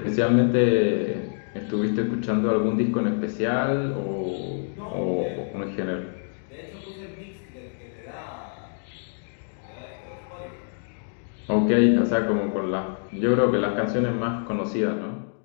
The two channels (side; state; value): right; silent; digital silence